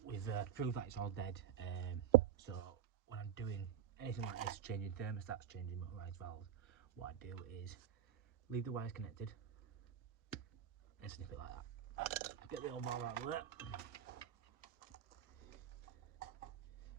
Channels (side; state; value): left; quieter; 9.9 dB